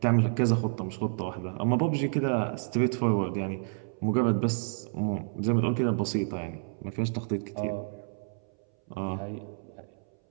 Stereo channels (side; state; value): left; silent; 58 dB below the other